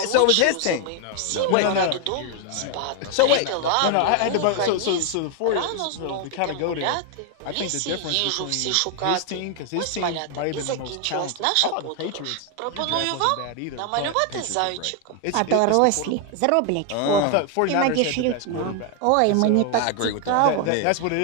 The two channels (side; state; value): both; different; correlation 0.01